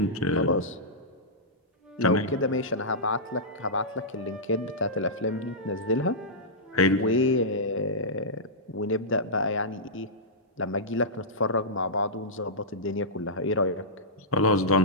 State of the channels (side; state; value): both; normal; correlation -0.14